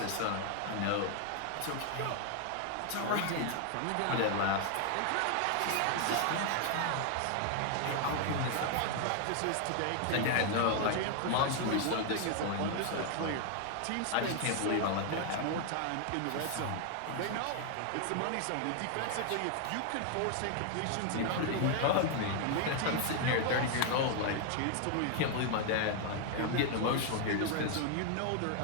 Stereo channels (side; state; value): both; different; correlation 0.00